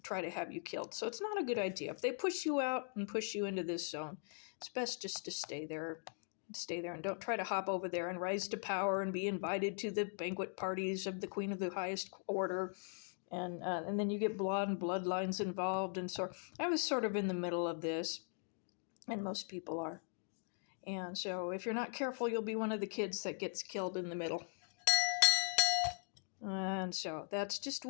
try to have you killed. So it's not a good idea. If they push you out and push you into this zone, it's best just to stay there and don't try to hop over there and rise to power and be invited to the banquet parties of the queen of the highest order, and then you get blood and bloodlines involved. And so I was sort of in the middle of this, and most people are. And so if you're not careful, you'll be one of the kids that gets killed in the middle. And so that's just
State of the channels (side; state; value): right; silent; 51 dB below the other